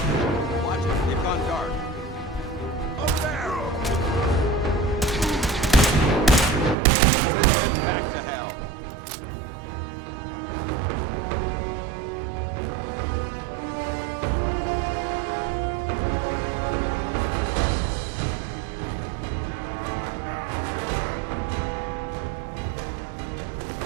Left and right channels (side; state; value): left; drops out; at 6.8 s